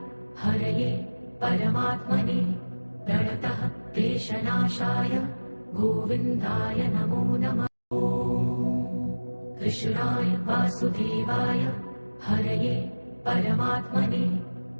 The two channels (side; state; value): both; inverted; correlation -1.00